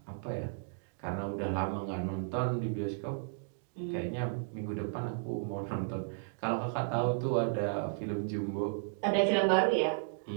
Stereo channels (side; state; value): left; silent; digital silence